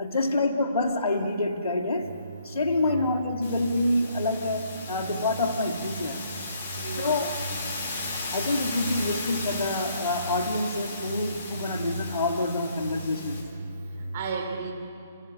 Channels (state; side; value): inverted; both; correlation -0.67